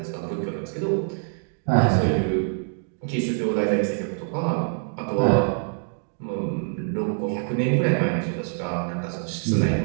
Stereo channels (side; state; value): left; silent; 62 dB below the other